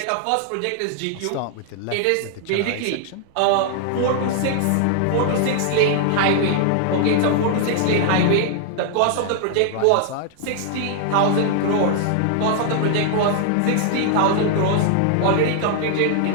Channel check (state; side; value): different; both; correlation 0.00